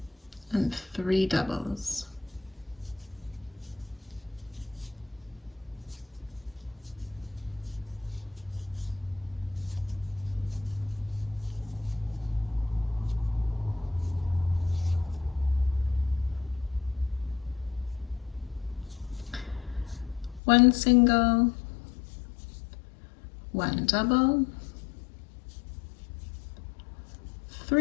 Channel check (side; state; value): right; drops out; at 20.4 s